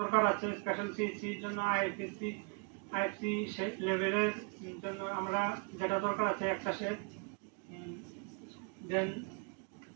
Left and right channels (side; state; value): left; quieter; 33.5 dB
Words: আছে স্পেশাল সিএসসির জন্য আইএফসি লেভেলের জন্য আমরা যেটা দরকার আছে একটা সেট, দেন